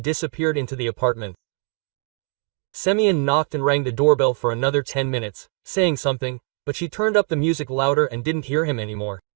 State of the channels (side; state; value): left; quieter; 35.2 dB